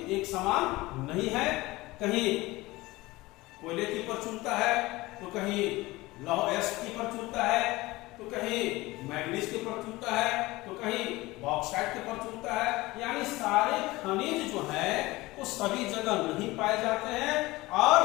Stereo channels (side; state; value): right; quieter; 20.1 dB